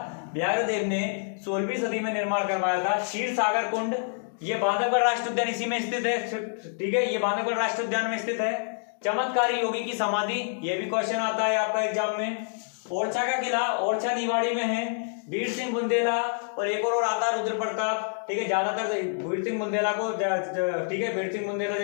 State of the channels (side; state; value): right; silent; digital silence